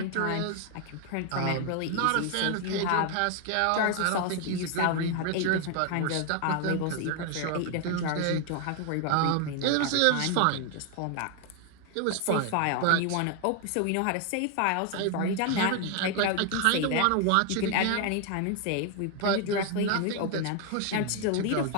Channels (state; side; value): different; both; correlation 0.01